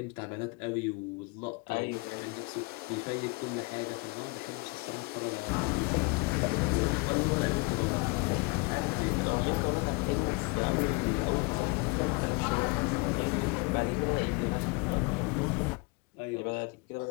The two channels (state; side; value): quieter; right; 28.5 dB